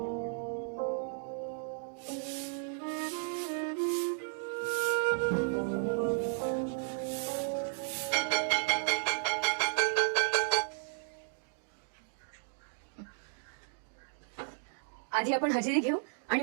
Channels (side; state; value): left; silent; digital silence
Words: आधी आपण हजेरी घेऊ आणि